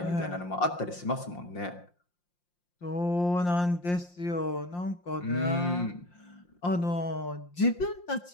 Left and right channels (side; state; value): right; late; 5.7 ms